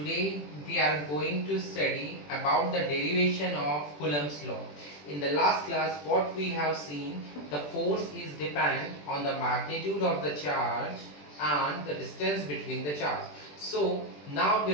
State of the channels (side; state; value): right; late; 20 ms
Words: we are going to study about the derivation of Coulomb's law. In the last class what we have seen, the force is dependent on the magnitude of the charge and the distance between the charge. So now